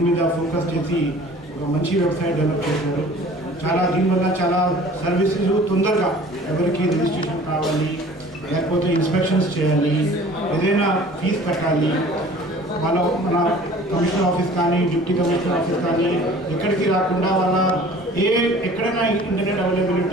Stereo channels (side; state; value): both; normal; correlation 0.47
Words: మీద ఫోకస్ చేసి ఒక మంచి వెబ్సైట్ డెవలప్ చేశారు. దీనివల్ల చాలా సర్వీసెస్ తొందరగా ఎవరికి రిజిస్ట్రేషన్ కావాలి, లేకపోతే ఇన్స్పెక్షన్స్ చేయాలి, ఏదైనా ఫీజు కట్టాలి, మన కమిషనర్ ఆఫీస్ కానీ డిప్యూటీ కమిషనర్ ఆఫీస్ కానీ ఎక్కడికి రాకుండా ఎక్కడైనా ఇంటర్నెట్